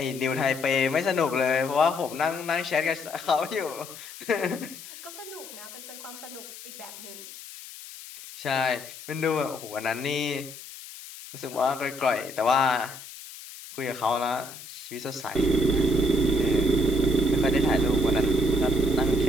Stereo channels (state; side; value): noise; left; hiss, 14 dB below the sound